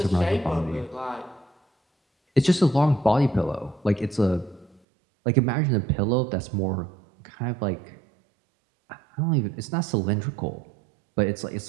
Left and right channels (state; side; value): drops out; left; at 4.8 s